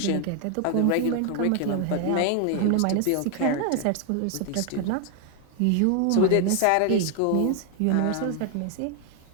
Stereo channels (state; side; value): different; both; correlation 0.00